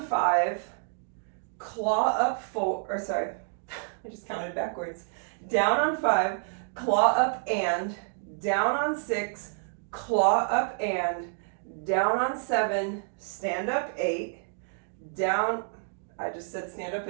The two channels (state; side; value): silent; left; digital silence